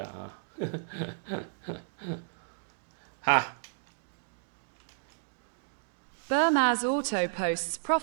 Bermaz Auto posts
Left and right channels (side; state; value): left; silent; digital silence